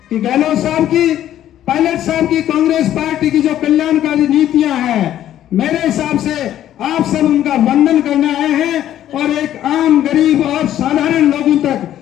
कि गहलोत साहब की, पायलट साहब की, कांग्रेस पार्टी की जो कल्याणकारी नीतियां हैं, मेरे हिसाब से आप सब उनका वंदन करने आए हैं। और एक आम गरीब और साधारण लोगों तक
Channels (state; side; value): quieter; right; 11.9 dB